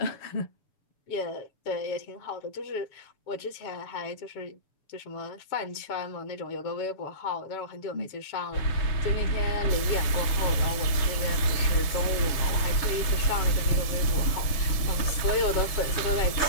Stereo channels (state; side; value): late; right; 6.8 ms